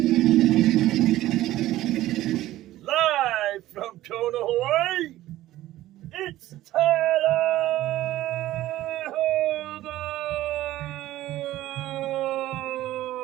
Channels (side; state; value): left; quieter; 15.1 dB